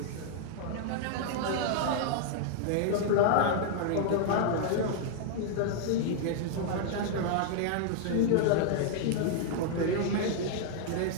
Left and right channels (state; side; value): different; both; correlation -0.01